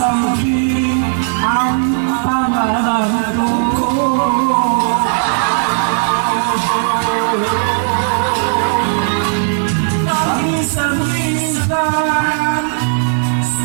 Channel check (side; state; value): left; silent; 69 dB below the other